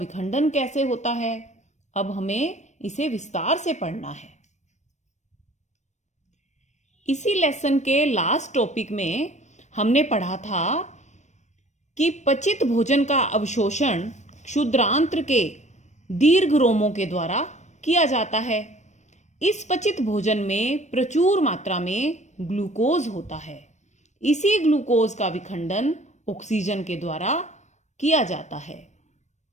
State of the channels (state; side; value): late; right; 0.34 ms